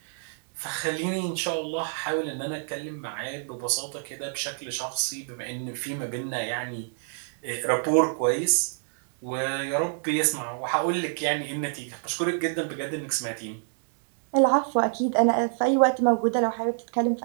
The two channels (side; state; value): left; silent; digital silence